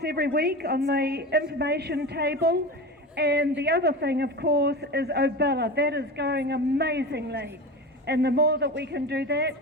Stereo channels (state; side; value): normal; both; correlation 0.27